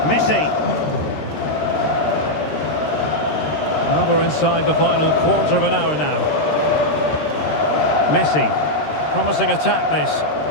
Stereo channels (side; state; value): right; late; 13 ms